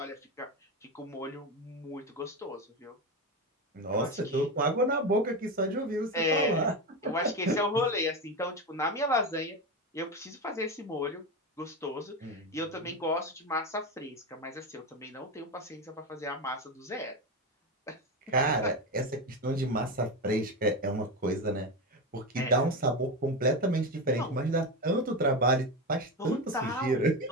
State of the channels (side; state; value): both; normal; correlation 0.17